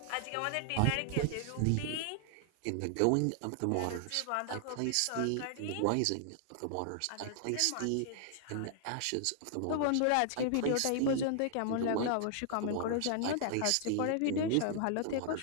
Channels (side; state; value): both; different; correlation -0.01